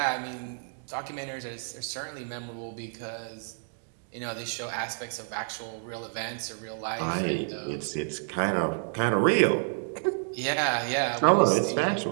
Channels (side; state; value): left; silent; 58 dB below the other